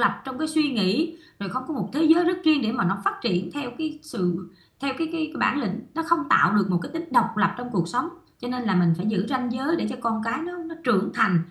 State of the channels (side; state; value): both; identical; correlation 1.00